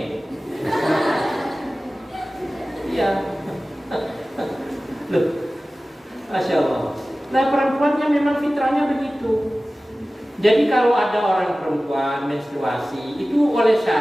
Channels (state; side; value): normal; both; correlation 0.97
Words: Iya. Loh, Masya Allah. Nah, perempuannya memang fitrahnya begitu. Jadi kalau ada orang perempuan menstruasi, itu oleh